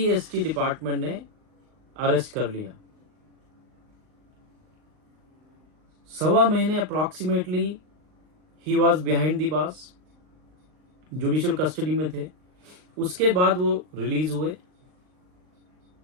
department ने arrest कर लिया। 1.25 महीने approximately he was behind the bars, judicial custody में थे। उसके बाद वो रिलीज हुए।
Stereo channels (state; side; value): late; left; 39 ms